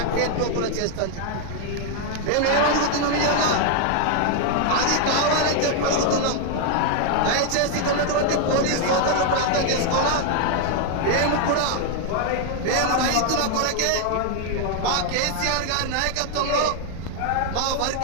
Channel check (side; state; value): both; different; correlation 0.00